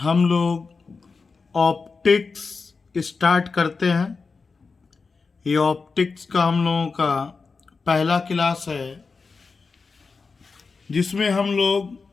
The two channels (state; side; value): quieter; right; 4.6 dB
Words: लोग ऑप्टिक्स स्टार्ट करते हैं। ये ऑप्टिक्स का हम लोगों का पहला क्लास है, जिसमें हम